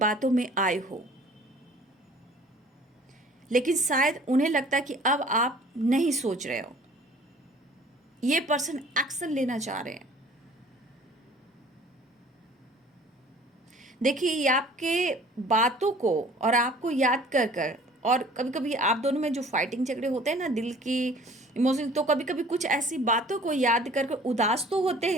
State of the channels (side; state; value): both; normal; correlation 0.51